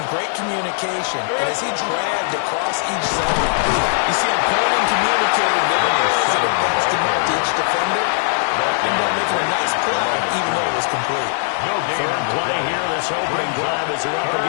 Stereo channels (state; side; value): silent; right; digital silence